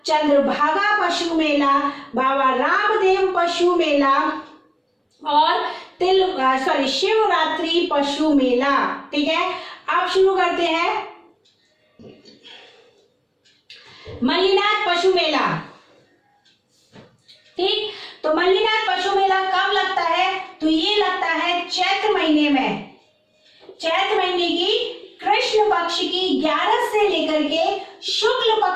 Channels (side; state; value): both; identical; correlation 1.00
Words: चंद्रभागा पशु मेला, बाबा रामदेव पशु मेला और शिवरात्रि पशु मेला। ठीक है, अब शुरू करते हैं मल्लीनाथ पशु मेला। ठीक, तो मल्लीनाथ पशु मेला कब लगता है? तो ये लगता है चैत्र महीने में। चैत्र महीने की कृष्ण पक्ष की 11 से लेकर के शुक्ल